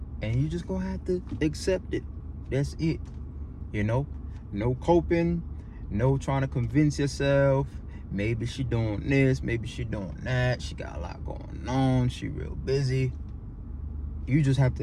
And you just gonna have to accept it. That's it. You know, no coping, no trying to convince yourself. Maybe she doing this, maybe she doing that. She got a lot going on. She real busy. You just have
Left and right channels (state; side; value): identical; both; correlation 1.00